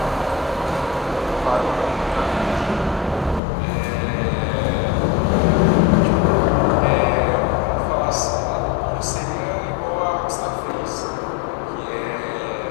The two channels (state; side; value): drops out; right; at 3.4 s